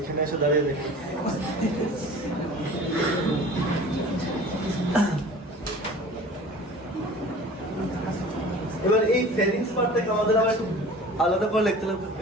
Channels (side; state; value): both; normal; correlation 0.42